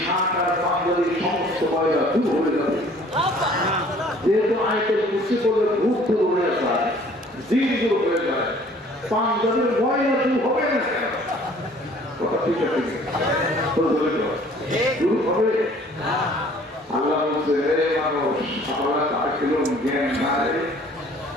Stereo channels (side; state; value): both; normal; correlation 0.54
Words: শাক আর পাঞ্জাবির সমস্ত ময়লা দূর হয়ে যাবে। যেহেতু আইটেম কুচি করলে ভূত দূর হয়ে যায়, দিন দূর হয়ে যায়, পাঞ্জাবির ময়লা দূর হবে না। কথা ঠিক আছে, দূর হবে। আল্লাহ বলছে, হে মানুষ, আমরা তার কিরম জ্ঞান নাই,